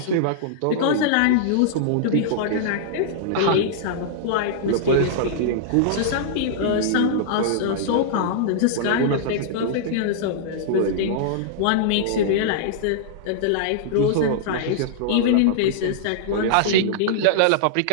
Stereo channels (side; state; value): both; different; correlation -0.02